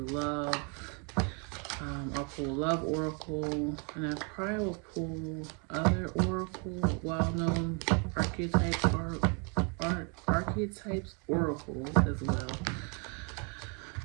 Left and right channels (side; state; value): left; quieter; 35.7 dB